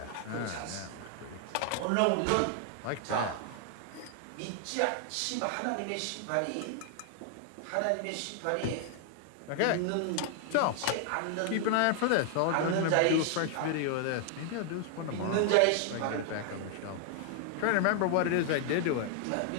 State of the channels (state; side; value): different; both; correlation 0.00